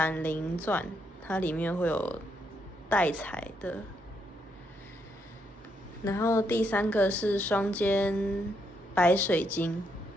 灵钻，它里面会有带彩的，然后第3个是双尖白水晶。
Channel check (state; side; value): normal; both; correlation 0.77